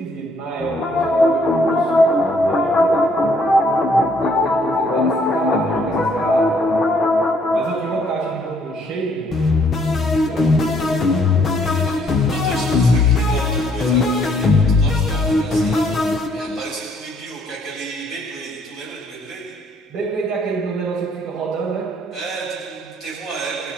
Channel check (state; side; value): normal; both; correlation 0.66